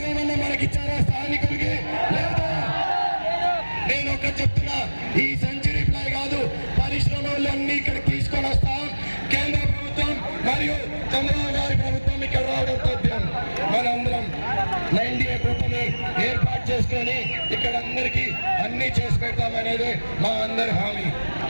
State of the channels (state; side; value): inverted; both; correlation -1.00